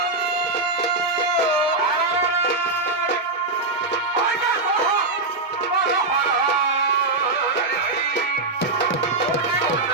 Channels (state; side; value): quieter; left; 3.2 dB